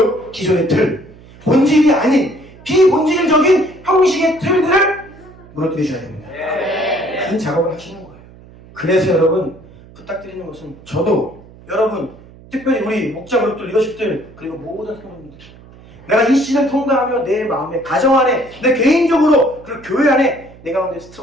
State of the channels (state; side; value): noise; right; hum, 22 dB below the sound